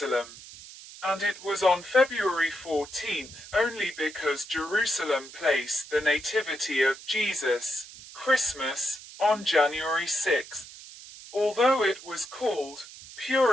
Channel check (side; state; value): right; noise; hiss, 16 dB below the sound